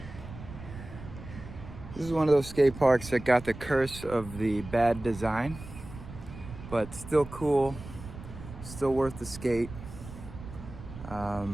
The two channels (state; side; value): noise; right; rumble, 13 dB below the sound